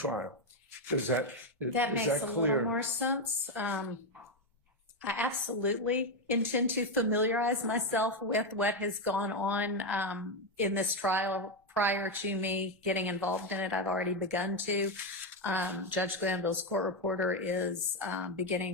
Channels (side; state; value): both; normal; correlation 0.07